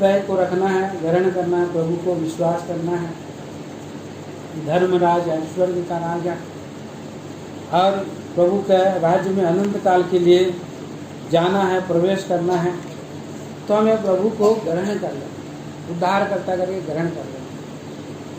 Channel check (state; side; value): identical; both; correlation 1.00